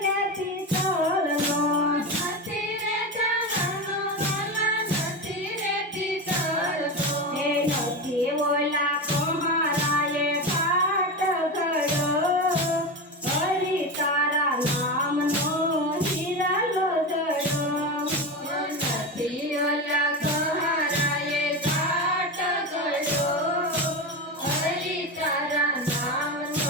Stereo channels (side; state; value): both; normal; correlation 0.20